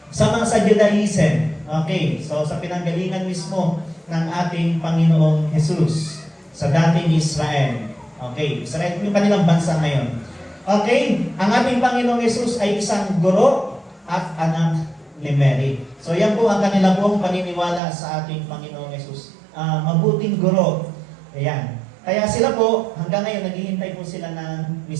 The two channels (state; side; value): drops out; left; at 17.8 s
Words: sa Judaism. Okay, so sa pinanggalingan mismo ng ating Panginoong Jesus sa dating Israel. Okay, Israel yung kanilang bansa ngayon. Okay, ang ating Panginoong Jesus ay isang guro at anak ni Mary. So yan po ang kanila pong paniniwala sa ating Panginoong Jesus. Mabuting guro. Ayan. Kaya sila po, hanggang ngayon, naghihintay po sila ng